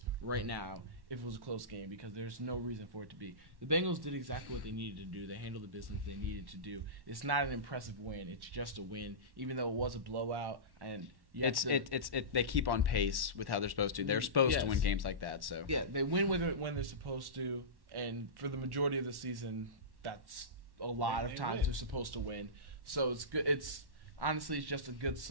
right now if it was a close game because there's no reason for it to be. The Bengals did exactly what they needed to do. They handled the business they needed to do. It's not an impressive win. It's just a win, even though it was a blowout. And they keep on pace with how they're supposed to. They're supposed to win games like that. So yeah, they win when they're supposed to, and for the majority of the season, that's a lot of times they're supposed to win. So it's good. Honestly, it's just a good,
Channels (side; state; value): left; late; 1.1 ms